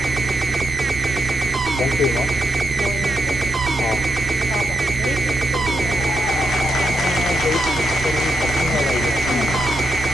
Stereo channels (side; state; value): both; normal; correlation 0.83